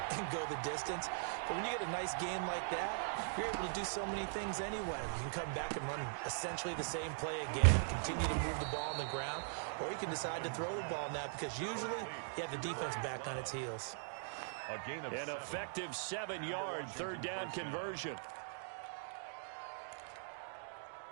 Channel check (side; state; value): left; silent; digital silence